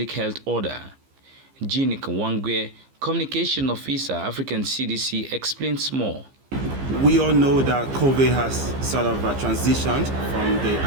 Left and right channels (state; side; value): late; left; 15 ms